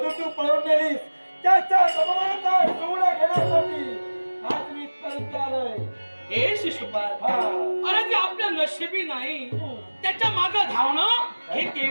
तू पळून नेलीस. त्याच्या अपमानाचा सूड घेण्यासाठी आज मी इथपर्यंत आलोय. हे शिशुपाल, अरे ते आपल्या नशिबी नाही. त्याच्या मागे धावणं हे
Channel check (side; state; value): both; inverted; correlation -1.00